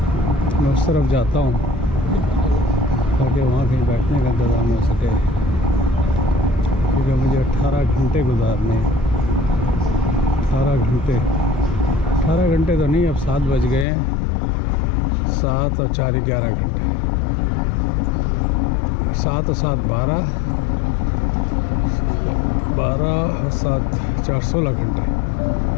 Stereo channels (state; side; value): drops out; right; at 13.9 s